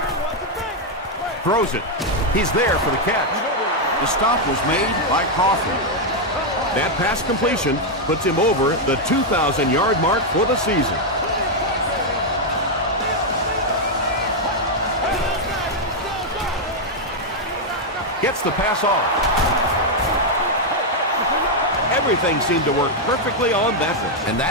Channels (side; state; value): both; normal; correlation 0.00